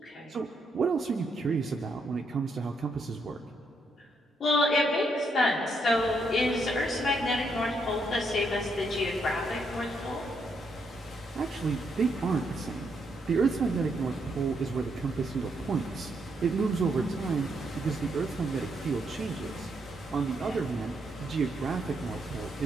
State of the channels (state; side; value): normal; both; correlation 0.77